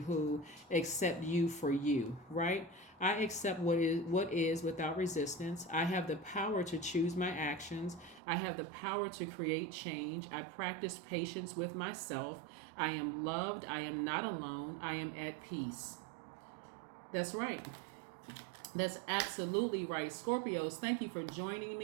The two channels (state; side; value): drops out; left; at 8.2 s